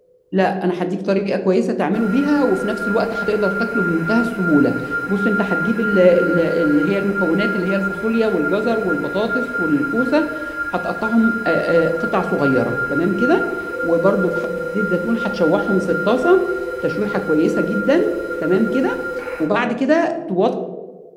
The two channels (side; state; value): both; identical; correlation 1.00